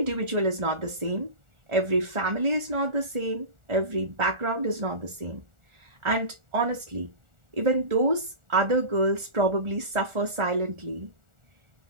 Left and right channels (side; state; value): left; late; 1.4 ms